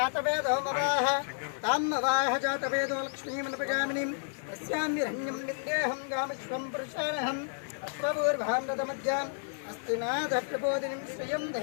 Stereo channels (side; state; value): right; silent; 57 dB below the other